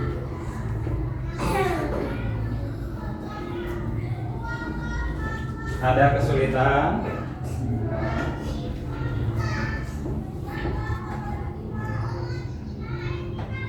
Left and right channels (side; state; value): both; identical; correlation 1.00